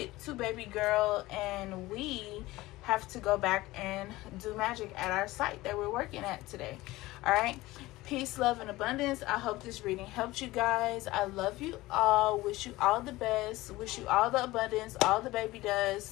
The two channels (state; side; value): quieter; right; 18.8 dB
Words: to baby girl, and we have to go back and do magic at our site that we're working at today. All right, peace, love, and abundance. I hope this reading helped you guys. I love you all. Wish you all the best. Wish you all the abundance, all the baby